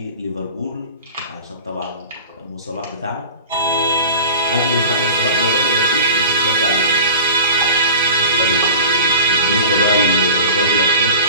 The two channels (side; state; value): both; inverted; correlation -0.38